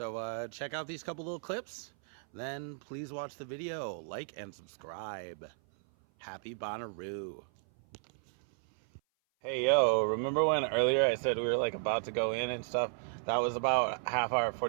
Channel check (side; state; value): left; silent; 55 dB below the other